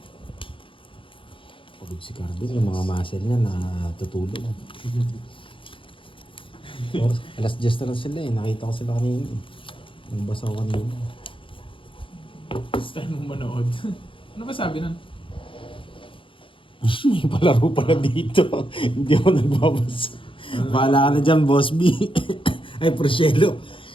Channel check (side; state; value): right; late; 0.25 ms